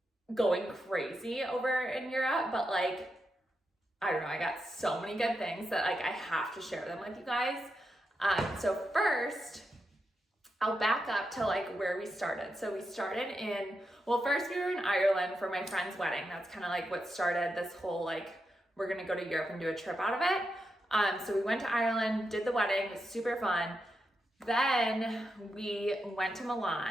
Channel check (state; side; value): normal; both; correlation 0.86